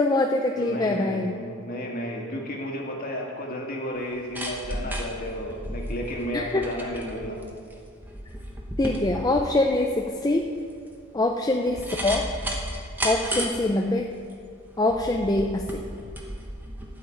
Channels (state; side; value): normal; both; correlation 0.55